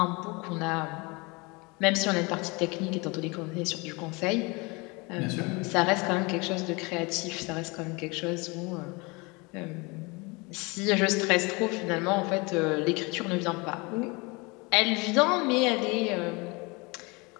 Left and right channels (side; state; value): right; quieter; 27.1 dB